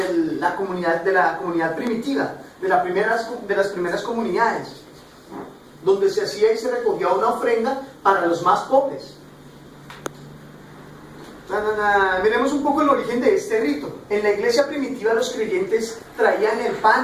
la comunidad primitiva, de las primeras comunidades, donde se hacía y se recogía una ofrenda para los más pobres. Miremos un poco el origen de este rito. En la iglesia primitiva los creyentes traían el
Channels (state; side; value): identical; both; correlation 1.00